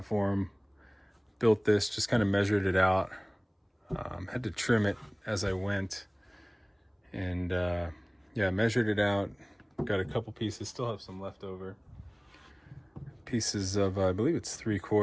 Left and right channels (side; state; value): both; identical; correlation 1.00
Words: Built this, just kind of measured it out. Had to trim it as I went. And yeah, measured it out. Got a couple pieces, still have some left over. Pieces of, I believe it's